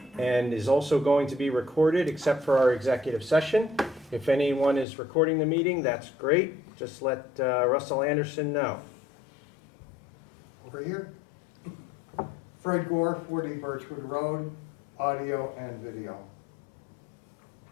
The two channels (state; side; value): drops out; right; at 4.9 s